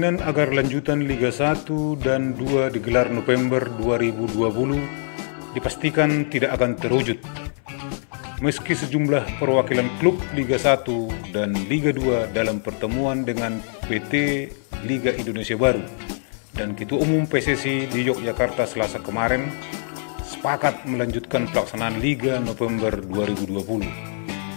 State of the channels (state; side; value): silent; right; 62 dB below the other